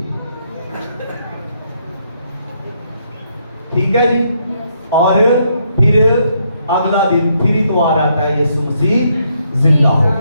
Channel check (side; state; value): both; inverted; correlation -0.74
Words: ठीक है जी। और फिर अगला दिन फिर इतवार आता है, यीशु मसीह जिंदा हो